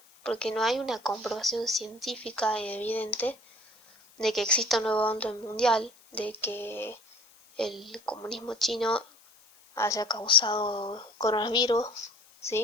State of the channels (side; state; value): left; noise; hiss, 28 dB below the sound